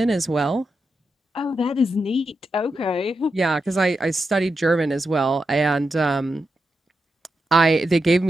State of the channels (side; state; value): both; normal; correlation 0.87